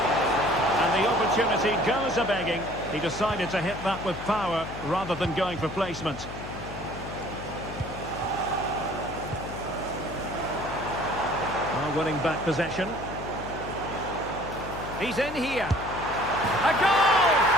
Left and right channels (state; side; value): noise; left; hum, 11 dB below the sound